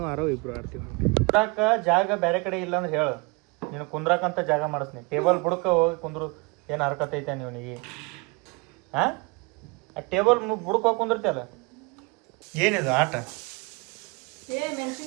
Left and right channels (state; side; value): quieter; left; 28.7 dB